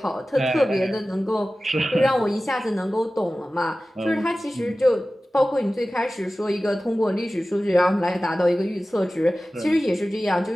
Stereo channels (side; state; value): both; normal; correlation 0.96